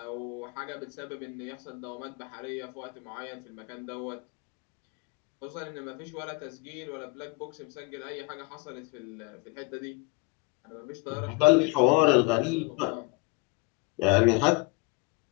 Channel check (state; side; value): quieter; right; 25.5 dB